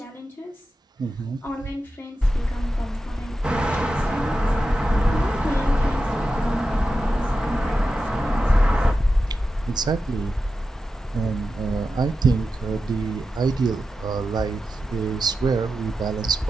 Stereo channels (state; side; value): normal; both; correlation 0.91